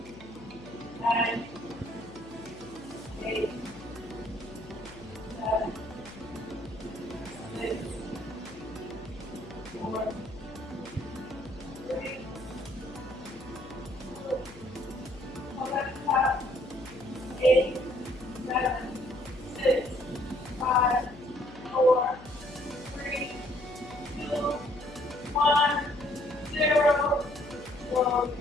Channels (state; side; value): noise; left; hum, 18 dB below the sound